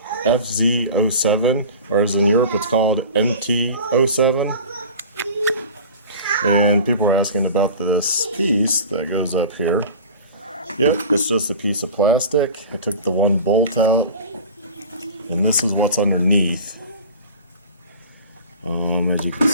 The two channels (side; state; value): both; inverted; correlation -0.38